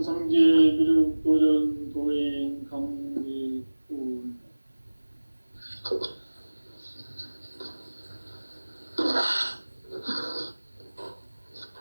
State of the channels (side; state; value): both; inverted; correlation -1.00